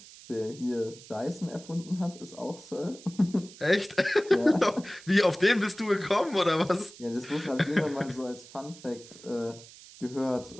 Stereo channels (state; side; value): noise; right; hiss, 19 dB below the sound